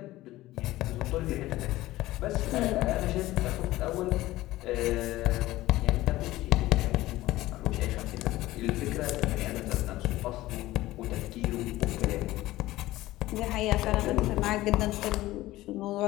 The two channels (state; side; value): quieter; right; 16.9 dB